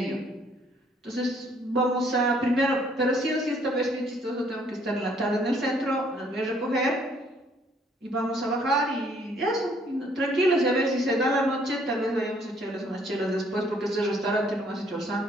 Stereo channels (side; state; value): both; normal; correlation 0.64